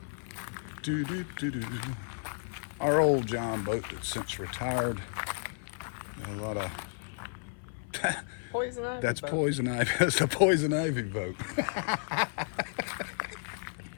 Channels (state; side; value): silent; right; 56 dB below the other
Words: Our old John boat that's since retired. A lot of Poison ivy. that's boat. poison ivy. That's a poison ivy boat.